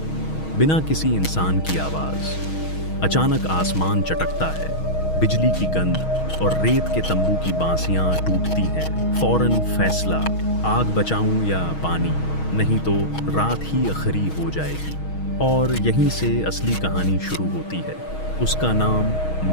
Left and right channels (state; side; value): late; right; 6.3 ms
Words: बिना किसी इंसान की आवाज। अचानक आसमान चटकता है, बिजली की गंध और रेत के तंबू की बांसियां टूटती हैं। फौरन फैसला, आग बचाऊं या पानी, नहीं तो रात ही आखिरी हो जाएगी। और यहीं से असली कहानी शुरू होती है। उसका नाम